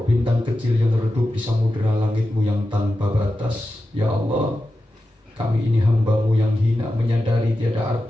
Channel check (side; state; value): both; normal; correlation 0.92